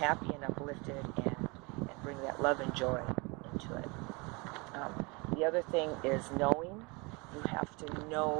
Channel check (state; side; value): quieter; left; 28.2 dB